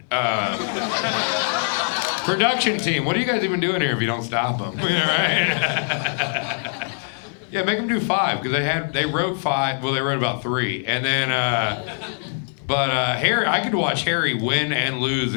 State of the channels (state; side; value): silent; right; digital silence